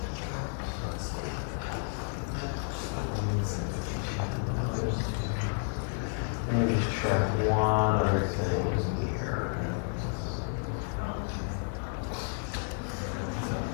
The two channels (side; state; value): right; silent; 57 dB below the other